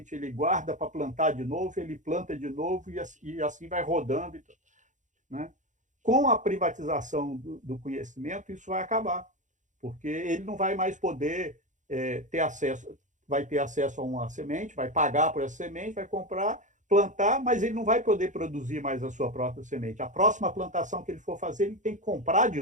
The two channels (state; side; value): late; left; 0.36 ms